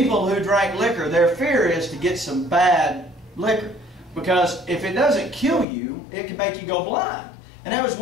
who drank liquor, their fear is to get some bad liquor, because if it doesn't kill you, it can make you go blind. And that was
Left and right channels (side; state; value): right; drops out; at 5.7 s